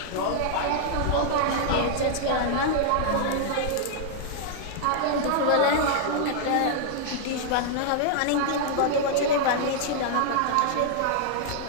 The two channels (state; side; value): different; both; correlation -0.01